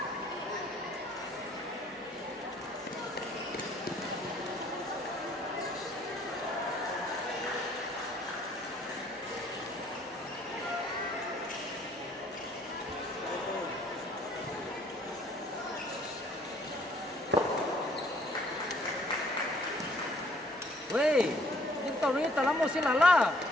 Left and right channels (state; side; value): normal; both; correlation 0.61